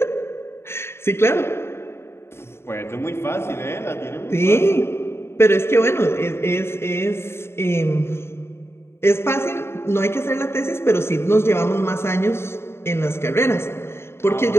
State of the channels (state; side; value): late; right; 0.12 ms